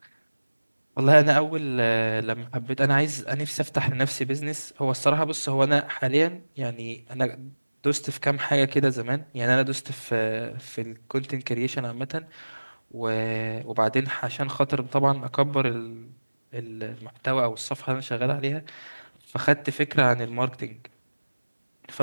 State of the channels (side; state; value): both; inverted; correlation -1.00